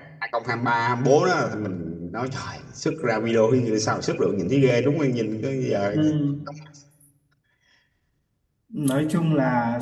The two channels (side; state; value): both; identical; correlation 1.00